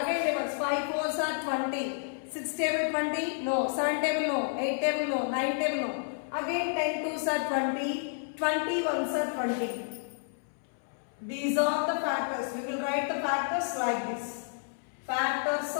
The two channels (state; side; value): silent; right; 57 dB below the other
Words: tables, 5 4s are 20, 6 table 20, no, 7 table no, 8 table no, 9 table no. Again 10 2s are 20, 20 1s are 20. These are the factors. We will write the factors like this. Factors